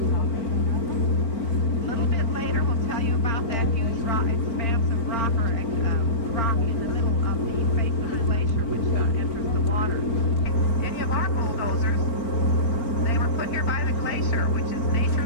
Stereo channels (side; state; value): right; late; 4.4 ms